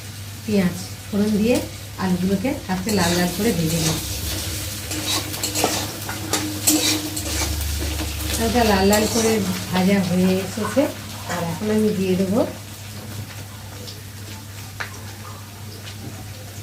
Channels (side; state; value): both; identical; correlation 1.00